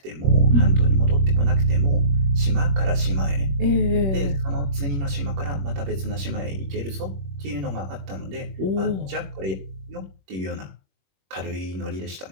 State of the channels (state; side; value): late; left; 21 ms